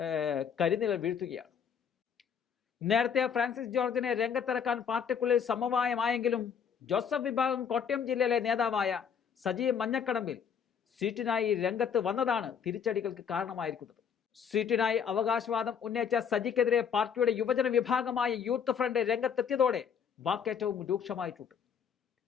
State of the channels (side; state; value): right; quieter; 7.4 dB